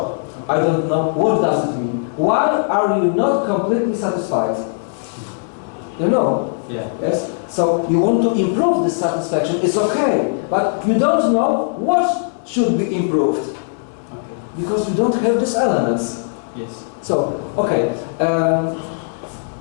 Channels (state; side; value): silent; right; 67 dB below the other